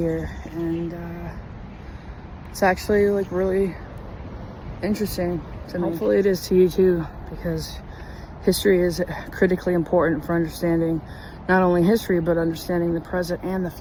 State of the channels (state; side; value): identical; both; correlation 1.00